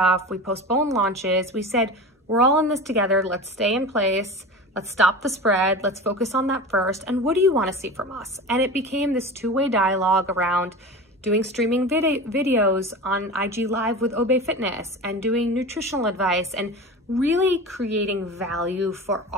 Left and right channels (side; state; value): both; normal; correlation 0.31